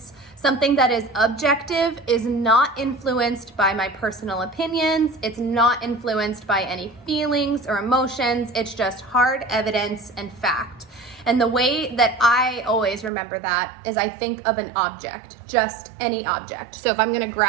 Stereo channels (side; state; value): left; drops out; at 13.1 s